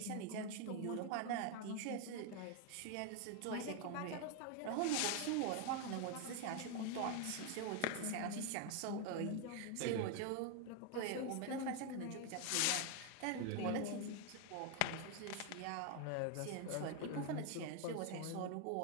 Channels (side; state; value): both; different; correlation 0.01